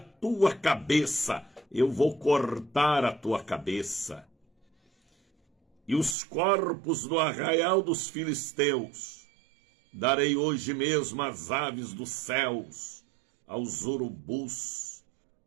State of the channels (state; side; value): drops out; left; at 6.2 s